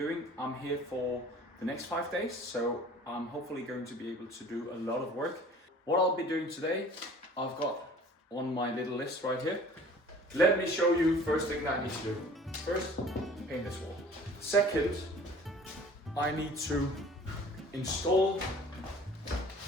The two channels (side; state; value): both; normal; correlation 0.48